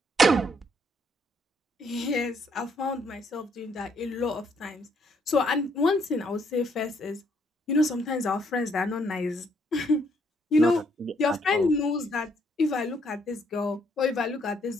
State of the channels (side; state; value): both; normal; correlation 0.70